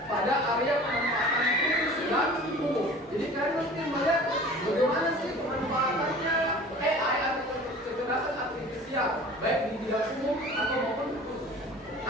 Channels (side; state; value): both; normal; correlation 0.43